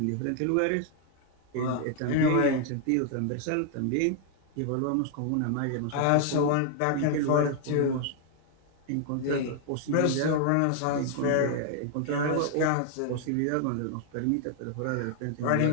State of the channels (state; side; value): different; both; correlation 0.00